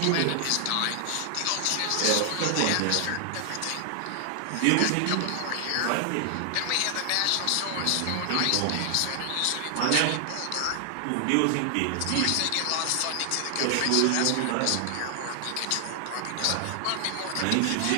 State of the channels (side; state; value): both; different; correlation 0.00